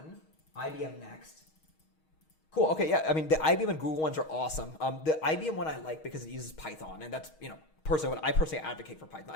IBM next. Cool. Okay, yeah. I mean, the IBM and Google ones are awesome. The IBM one I like because it uses Python, and that's, personally, I personally advocate for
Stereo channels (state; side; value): late; right; 6.4 ms